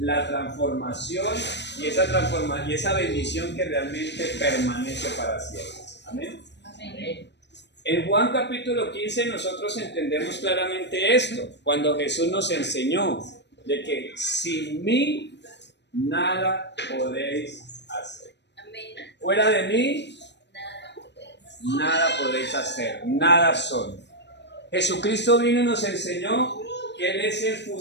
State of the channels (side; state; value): right; late; 0.51 ms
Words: transformación y esa bendición que realmente permanece para siempre. Amén. Amén. En Juan capítulo 15 nosotros entendemos claramente esto, cuando Jesús nos enseñó de que sin mí nada podéis hacer. Fuera de mí nada podéis hacer, nada son. Jesucristo vino y nos enseñó que Él es el